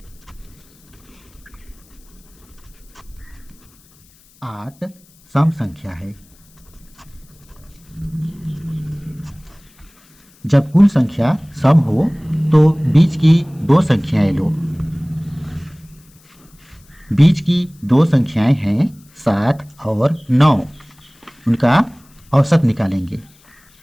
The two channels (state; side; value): noise; left; hiss, 30 dB below the sound